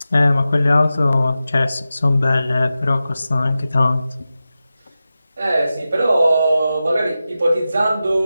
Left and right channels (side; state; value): both; inverted; correlation -0.93